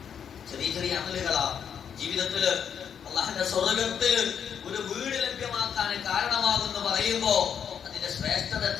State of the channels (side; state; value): right; quieter; 7.9 dB